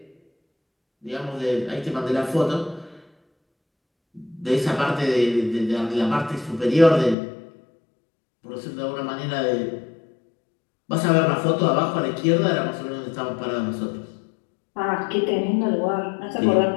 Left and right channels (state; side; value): drops out; right; at 7.2 s